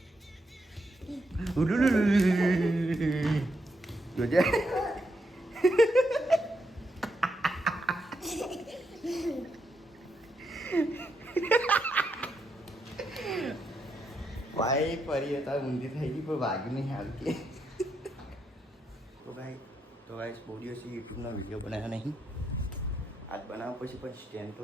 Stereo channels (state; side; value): normal; both; correlation 0.81